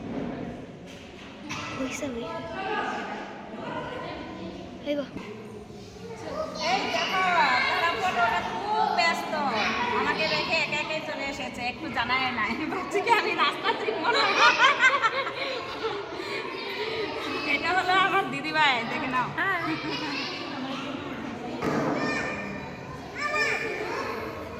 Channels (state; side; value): identical; both; correlation 1.00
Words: হইছে হই আইবো। এই দেখো তারা ফটোটা খুব ব্যস্ত, আমাকে রেখে একা একাই চলে এসেছে, একটু জানায় নাই। ভাবছি কি আমি রাস্তা চিনব না। এটা হলো আমার দিদিভাই, দেখে নাও।